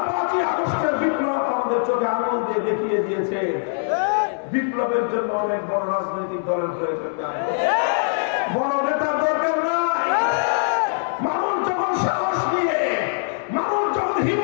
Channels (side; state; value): right; silent; digital silence